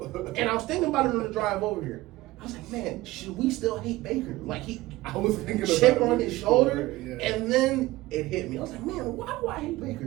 I was thinking about it on the drive over here. I was like, man, should we still hate Baker? Like I was thinking chip about on his shoulder, yeah. and then it hit me. I was like, man, why do I hate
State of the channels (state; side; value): quieter; left; 18.4 dB